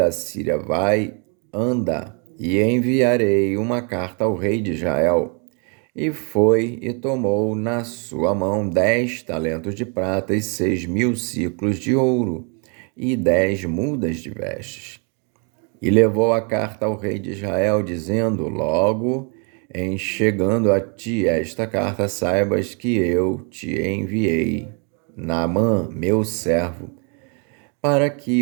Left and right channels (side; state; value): left; quieter; 35.3 dB